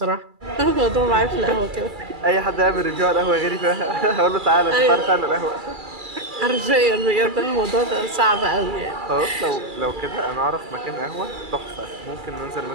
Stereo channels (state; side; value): late; left; 2.3 ms